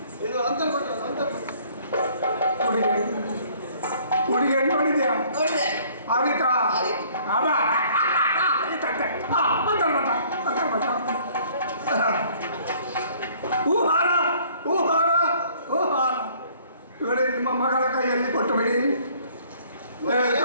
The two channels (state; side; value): inverted; both; correlation -0.57